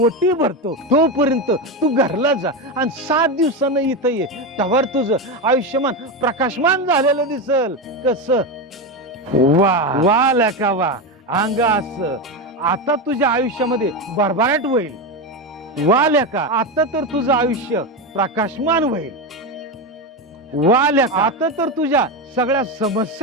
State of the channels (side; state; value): both; normal; correlation 0.14